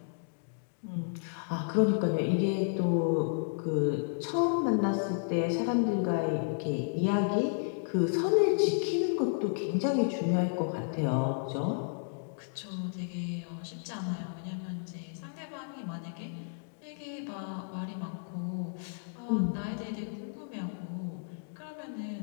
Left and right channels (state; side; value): silent; right; digital silence